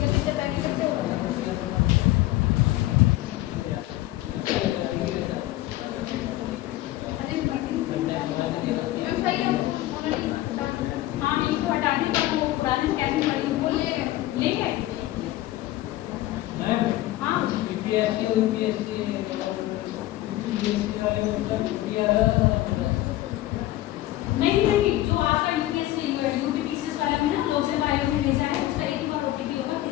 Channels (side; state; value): right; quieter; 15.8 dB